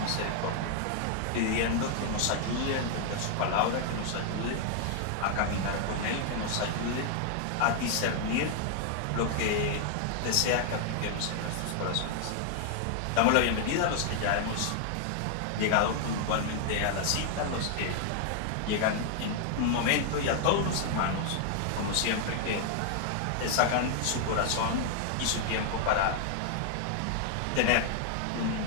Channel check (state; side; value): different; both; correlation 0.00